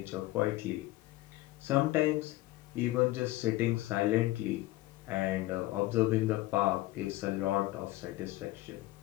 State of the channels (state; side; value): quieter; right; 17.6 dB